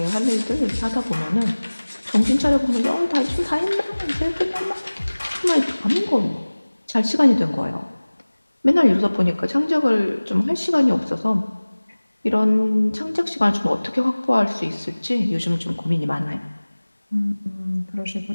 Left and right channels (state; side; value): inverted; both; correlation -1.00